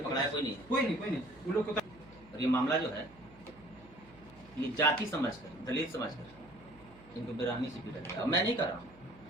पकड़ाया कोई नहीं वो लोग को। और ये मामला जो है ये जाति समझकर दलित समझकर इनको बेरहमी से पीटा गया। मैं नहीं कर रहा हूँ,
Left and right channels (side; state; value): right; noise; hum, 23 dB below the sound